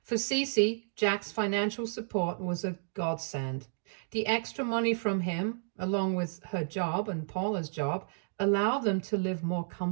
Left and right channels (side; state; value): left; silent; digital silence